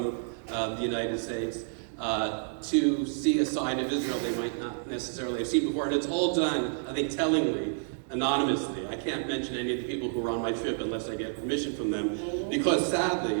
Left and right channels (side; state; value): left; silent; digital silence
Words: the United States to see a side of Israel they might not necessarily have seen before. And it's all done, I think, tellingly, anonymously. I can't mention any of the people who were on my trip unless I get permission from them, because